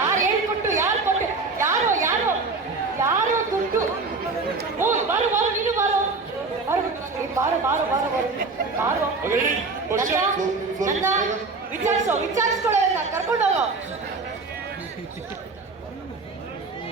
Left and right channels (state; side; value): quieter; left; 3.9 dB